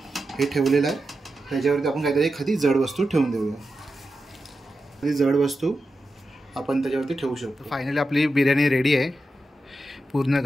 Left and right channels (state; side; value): normal; both; correlation 0.90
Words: हे ठेवलेलं आहे त्याच्यावरती आपण काहीतरी एखादी जड वस्तू ठेवून देऊया. एखादी जड वस्तू आपण त्याच्यावरती ठेवू शकतो. फायनली आपली बिर्याणी रेडी आहे. पूर्ण